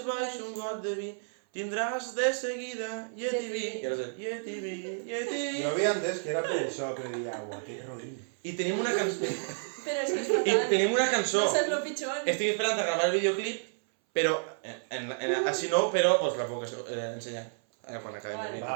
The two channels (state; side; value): silent; left; 57 dB below the other